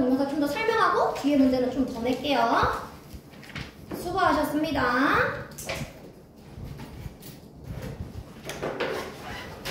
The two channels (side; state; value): both; identical; correlation 1.00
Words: 좀 더 설명하고 뒤에 문제는 좀 더 낼게요. 수고하셨습니다.